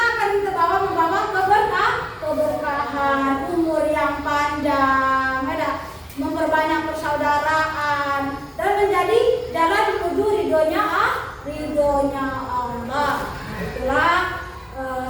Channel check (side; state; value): both; identical; correlation 1.00